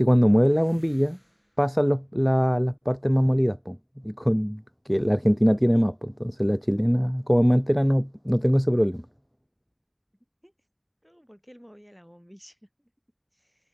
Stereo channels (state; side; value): identical; both; correlation 1.00